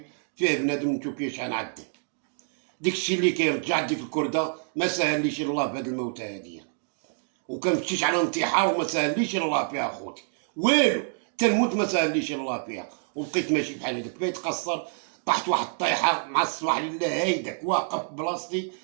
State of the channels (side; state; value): left; silent; 60 dB below the other